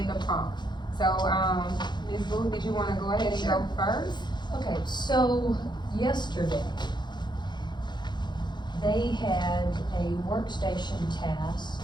the prompt. So, Ms. Booth, did you want to go ahead and go first? Okay, so yesterday, they had a workstation task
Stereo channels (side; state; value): right; late; 0.21 ms